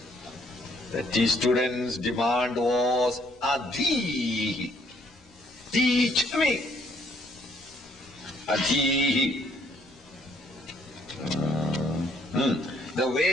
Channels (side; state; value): both; normal; correlation 0.67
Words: The student's demand was Adhihi. Teach me. Adhihi. The